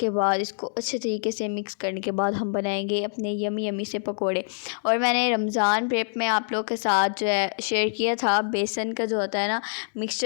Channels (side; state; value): right; silent; digital silence